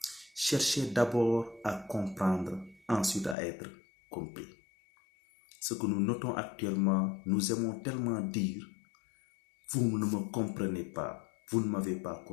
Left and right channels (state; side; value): drops out; right; at 3.4 s